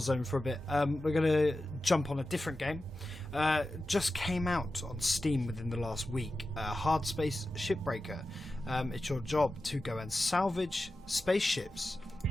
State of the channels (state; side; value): normal; both; correlation 0.93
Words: for a bit. We're going to jump on a different game. Just came out on Steam within the last week. Hardspace Shipbreaker. It's your job to go and salvage spaceships